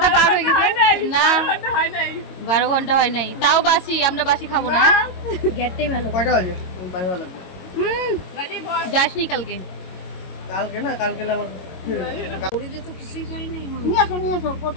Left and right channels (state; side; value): late; right; 22 ms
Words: পার হয়ে গেছে না, 12 ঘন্টা হয় নাই, তাও বাসি। আমরা বাসি খাবো না। গেটটাই ভালো। কয়টা বাজে? ভালো লাগবে। যাসনি কালকে? কালকে না, কালকে আমার ওরিতে তো কিছুই করি নাই। নিয়ে আসো